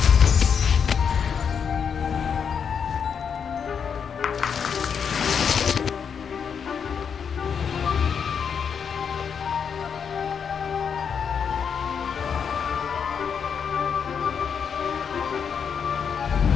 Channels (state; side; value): quieter; right; 6.9 dB